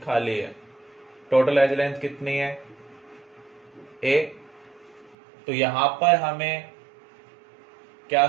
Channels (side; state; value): left; drops out; at 5.2 s